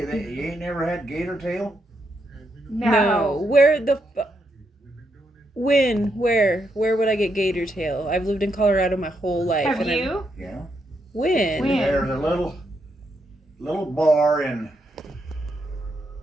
never had gator tail? No. Where the when? Where would I get gator tail? I've lived in Colorado my whole life. Have and you? Yeah. When? When? There's a little bar in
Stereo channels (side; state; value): both; normal; correlation 0.80